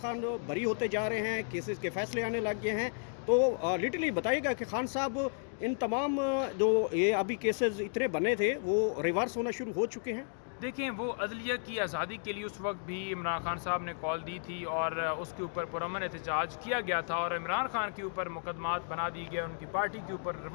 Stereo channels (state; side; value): silent; right; digital silence